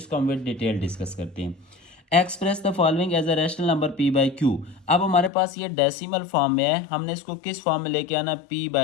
हम विद डिटेल डिस्कस करते हैं। Express the following as a rational number p/q। अब हमारे पास ये डेसिमल फॉर्म में है, हमने इसको किस फॉर्म में लेके आना है,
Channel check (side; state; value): right; drops out; at 5.3 s